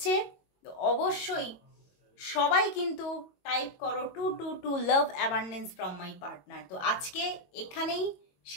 তো অবশ্যই সবাই কিন্তু টাইপ করো 222 লাভ অ্যাবান্ডেন্স ফ্রম মাই পার্টনার। তো আজকে এখানেই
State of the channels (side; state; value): right; late; 22 ms